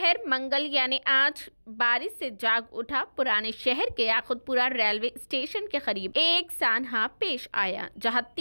मंगल यानी आज बारिश से जाग उठा, पुराने शहर के याकुतपुरा रेलवे स्टेशन के करीब एक सानहा पेश आया, जहां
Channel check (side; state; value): both; inverted; correlation -1.00